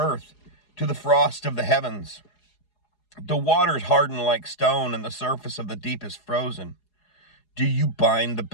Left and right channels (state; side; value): late; right; 4.8 ms